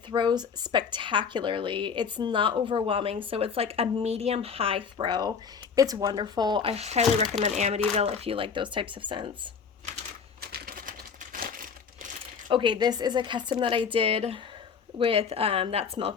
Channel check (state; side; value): quieter; right; 6.1 dB